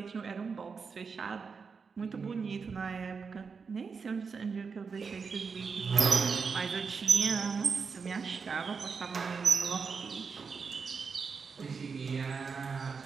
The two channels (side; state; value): left; quieter; 5.4 dB